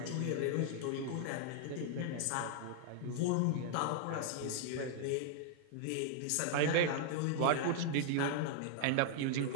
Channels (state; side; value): different; both; correlation -0.01